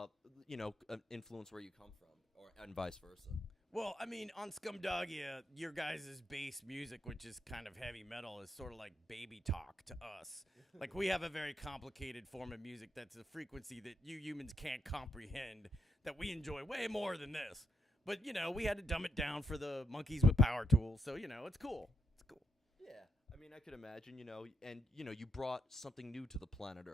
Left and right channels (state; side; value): normal; both; correlation 0.79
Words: influence where you come from, and vice versa? Well, I mean, on Scumdogia, your guys' bass music, which is kind of heavy metal, is sort of like baby talk to us. Like, we have a very complicated form of music that's a frequency that you humans can't comprehend, that we enjoy way more than this. But, you know, we had to dumb it down for the monkeys with power tools, so, you know, it's cool. It's cool. Yeah. I mean, I could imagine, you know, and, you know, you brought something new to the planet